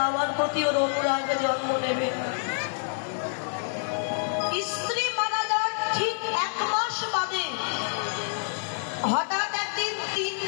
আমার প্রতি ওর অনুরাগ জন্ম নেবে না। স্ত্রী মারা যাওয়ার ঠিক 1 মাস বাদে হঠাৎ একদিন 3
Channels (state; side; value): silent; right; digital silence